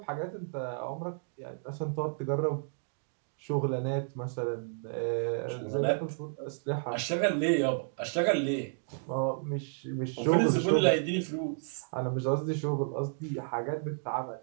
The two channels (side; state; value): left; silent; digital silence